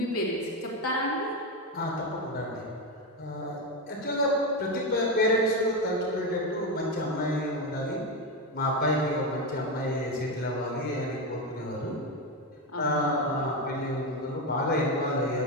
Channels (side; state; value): both; normal; correlation 0.12